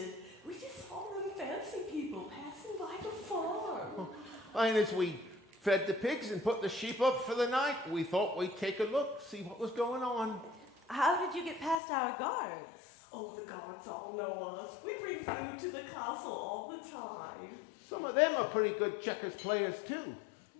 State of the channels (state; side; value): drops out; right; at 11.8 s